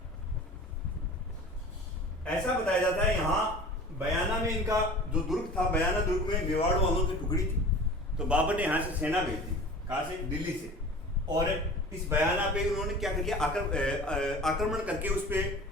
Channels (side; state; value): both; normal; correlation 0.40